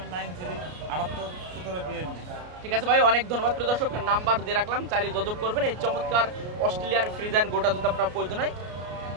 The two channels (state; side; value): late; left; 33 ms